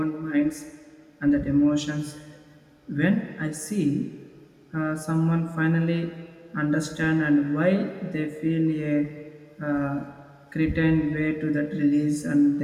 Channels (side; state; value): both; identical; correlation 1.00